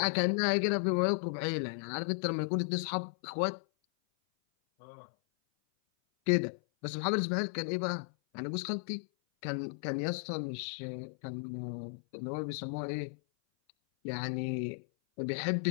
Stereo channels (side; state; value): right; silent; 55 dB below the other